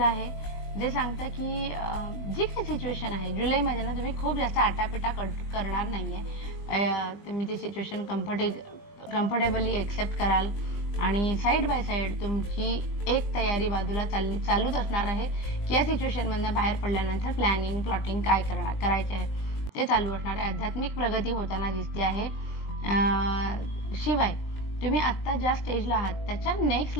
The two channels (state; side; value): late; right; 20 ms